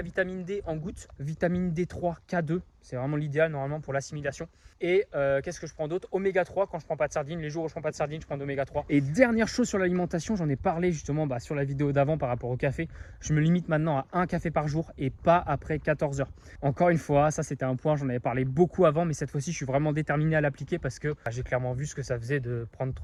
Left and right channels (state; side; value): identical; both; correlation 1.00